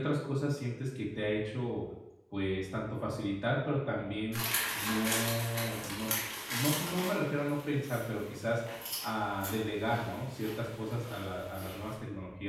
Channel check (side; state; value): both; identical; correlation 1.00